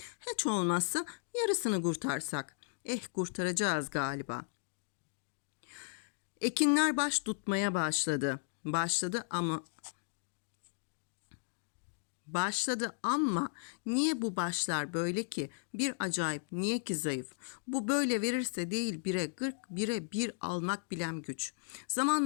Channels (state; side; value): silent; right; digital silence